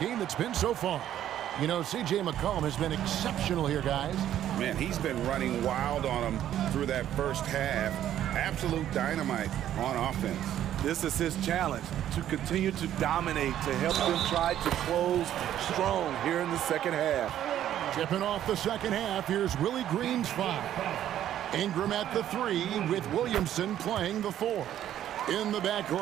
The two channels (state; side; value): quieter; left; 11.4 dB